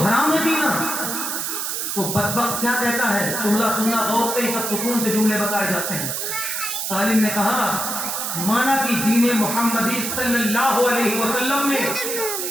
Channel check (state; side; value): noise; right; hiss, 2 dB below the sound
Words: ہے پینا۔ تو بدبخت کیا کہتا ہے، جملہ سننا غور سے، سب سکون سے جملے بتائے جاتے ہیں۔ سالم نے کہا مانا کہ دین محمدی صلی اللہ علیہ وسلم میں